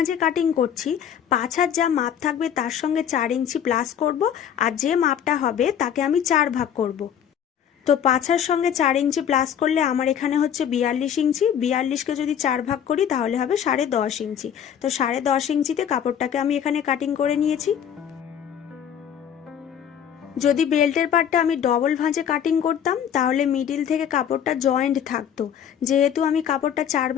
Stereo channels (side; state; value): right; quieter; 9.0 dB